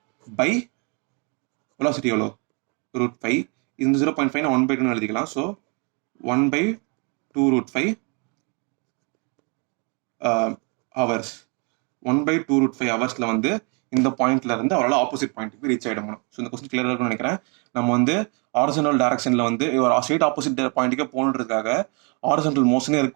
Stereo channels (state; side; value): quieter; left; 34.6 dB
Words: by velocity எவ்வளோ? root 5. இந்த 0.5 நான் 1/2 எழுதிக்கலாம். So 1/2 root 5 hours. 1/2 root 5 ஹவர்ஸ்ல வந்து இந்த பாயிண்ட்ல இருந்து அவரால் ஆப்போசிட் பாயிண்ட்டுக்கு ரீச் ஆகிடணும். ஸோ இந்த கொஸ்டின் கிளியராக இருக்கும்னு நினைக்கிறேன். நம்ம வந்து ஹாரிசான்டல் டைரக்ஷன்ல வந்து ஒரு ஸ்ட்ரெயிட் ஆப்போசிட் பாயிண்ட்டுக்கே போகணுன்றதுக்காக ஹாரிசான்டல் மோஷனே